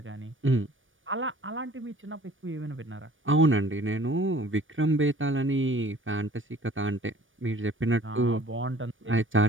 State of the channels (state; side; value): late; left; 0.57 ms